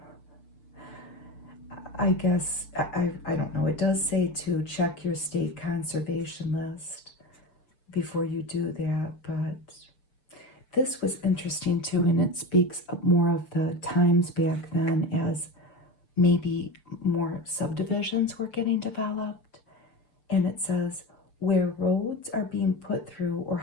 I guess, I don't know, it does say to check your state conservation list before you do that, but this was interesting too, and it speaks more of the times back then as maybe more subdivisions were getting developed. And it says, where roads are being put through or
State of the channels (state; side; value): late; right; 6.7 ms